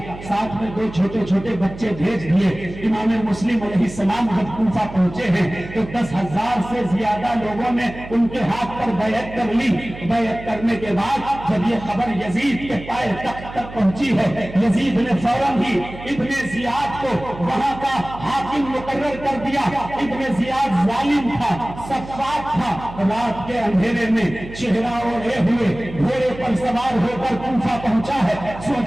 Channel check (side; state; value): right; noise; hum, 14 dB below the sound